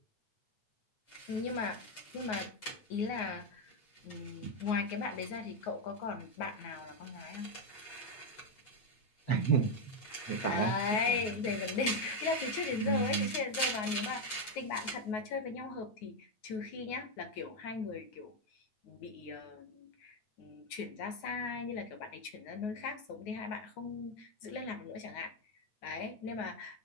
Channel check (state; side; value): late; right; 8.1 ms